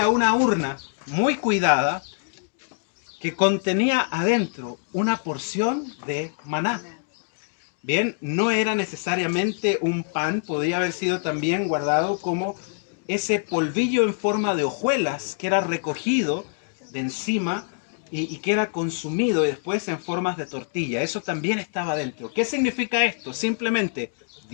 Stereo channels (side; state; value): right; silent; digital silence